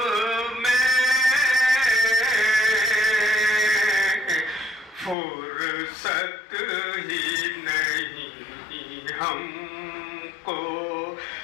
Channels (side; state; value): right; drops out; at 5.2 s